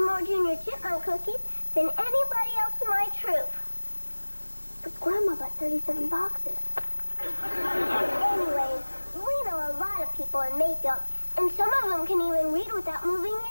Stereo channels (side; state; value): both; inverted; correlation -1.00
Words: more Junior Chipmunk cookies than anybody else in my troop. But Grandma bought 37 boxes. Anyways, we know a lot of people in Mayfield, and some of them can even read without moving